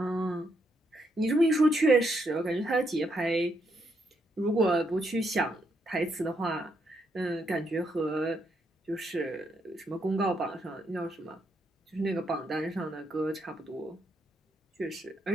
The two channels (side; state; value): both; normal; correlation 0.77